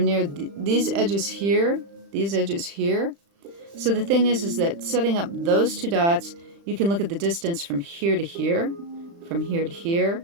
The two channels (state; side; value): late; left; 35 ms